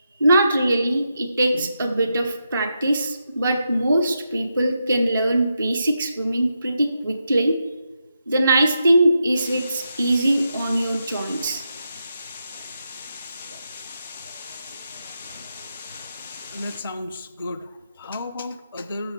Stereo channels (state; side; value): inverted; both; correlation -0.85